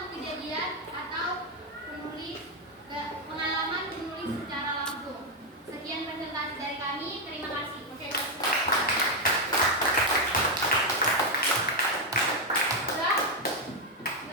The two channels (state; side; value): normal; both; correlation 0.04